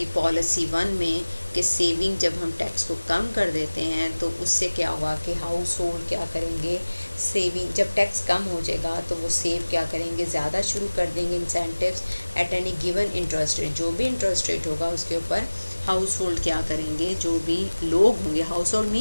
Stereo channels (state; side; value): inverted; both; correlation -1.00